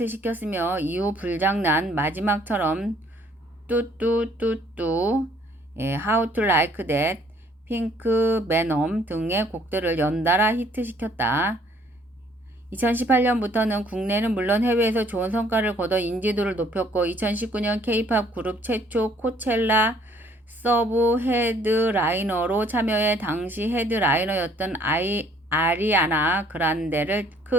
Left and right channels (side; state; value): both; normal; correlation 0.61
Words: 이후 불장난, 마지막처럼 뚜뚜뚜뚜, How to Like That, 핑크, 베놈 등의 곡들을 연달아 히트시켰다. 2018년부터는 국내는 물론 해외에서 좋은 성과를 거둬 인지도를 높였고 2019년 K-팝 그룹 최초 코첼라 서브 헤드라이너로 참여해 당시 헤드라이너였던 아리아나 그란데를